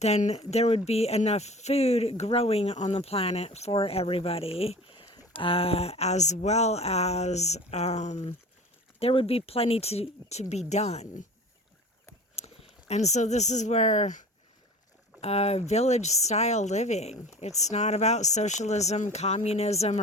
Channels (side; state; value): both; normal; correlation 0.40